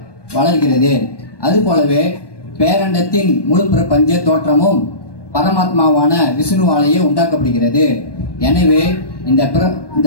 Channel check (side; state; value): right; late; 1.2 ms